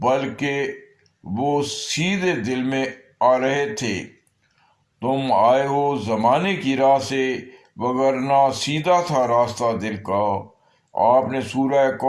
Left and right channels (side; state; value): both; identical; correlation 1.00